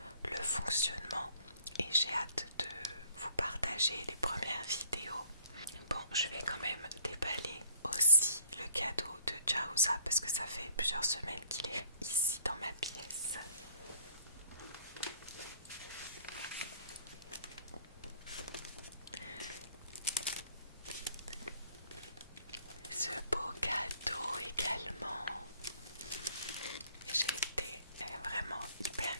le fonctionnement et j'ai hâte de vous partager les premières vidéos. Bon, je vais quand même déballer aussi le cadeau de Jaouza parce que ça fait plusieurs semaines qu'il est ici dans ma pièce. Ce beau cadeau également. J'ai été vraiment hyper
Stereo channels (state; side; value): inverted; both; correlation -0.59